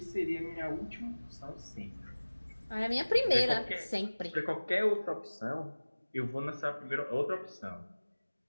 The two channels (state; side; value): inverted; both; correlation -1.00